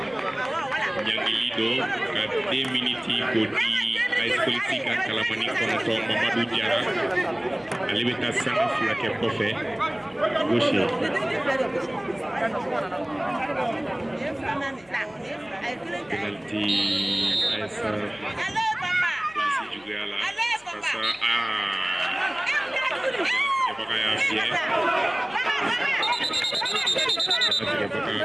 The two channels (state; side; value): noise; left; hum, 30 dB below the sound